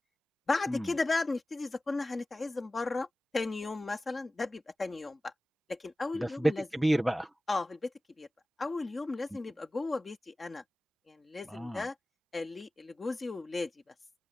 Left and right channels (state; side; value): normal; both; correlation 0.97